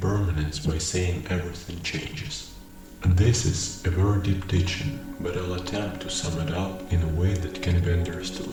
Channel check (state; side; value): identical; both; correlation 1.00